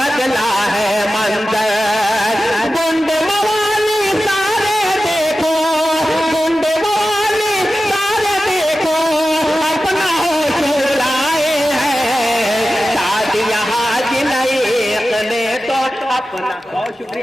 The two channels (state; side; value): normal; both; correlation 0.94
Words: साथ करना। बहुत